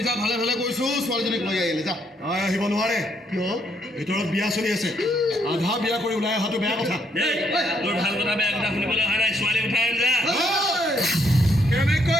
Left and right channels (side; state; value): both; normal; correlation 0.72